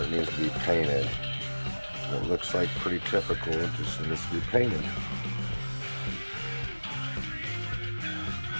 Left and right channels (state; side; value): inverted; both; correlation -1.00